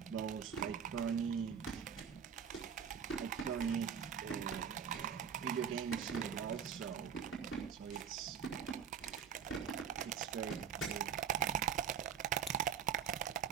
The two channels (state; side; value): quieter; left; 7.6 dB